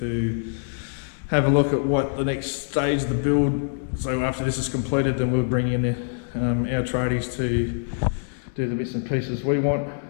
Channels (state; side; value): silent; right; digital silence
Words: have a look at what the next stage of the build. So after this is completed, then we'll bring in our tradies to do the bits and pieces we want.